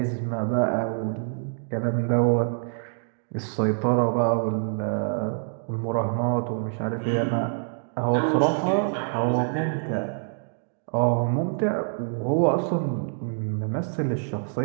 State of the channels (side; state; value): left; silent; 61 dB below the other